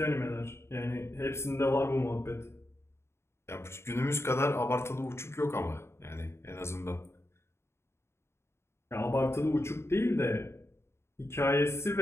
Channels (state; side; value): late; right; 0.13 ms